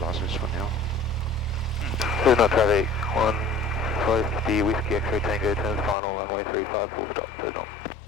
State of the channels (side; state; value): right; drops out; at 6.0 s